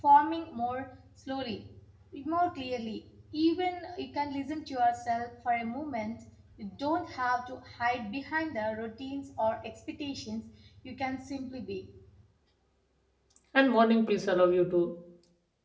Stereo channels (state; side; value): identical; both; correlation 1.00